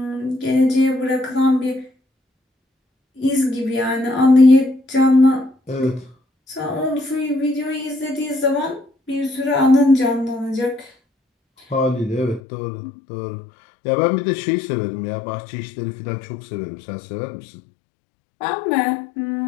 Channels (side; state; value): right; drops out; at 12.4 s